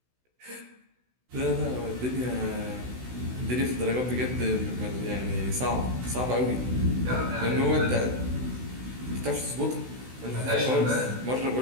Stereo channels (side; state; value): left; late; 16 ms